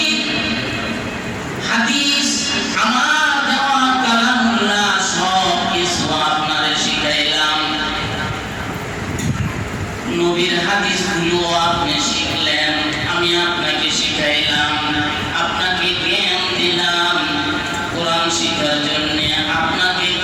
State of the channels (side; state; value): both; identical; correlation 1.00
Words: হাদিস আমার দেওয়া কালামুল্লাহ সব কিছু আপনারে শিখাইলাম, নবীর হাদিসগুলো আপনি শিখলেন, আমি আপনাকে শিখাইলাম, আপনাকে জ্ঞান দিলাম কোরআন শিখার জন্য, আপনাকে